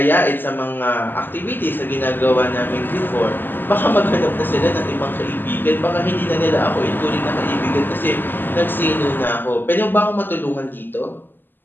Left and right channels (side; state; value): right; late; 0.093 ms